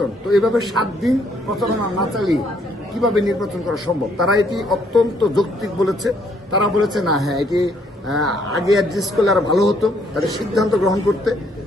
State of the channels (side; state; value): both; normal; correlation 0.68